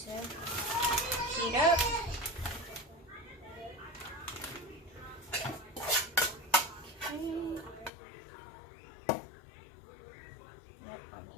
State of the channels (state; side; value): drops out; right; at 7.9 s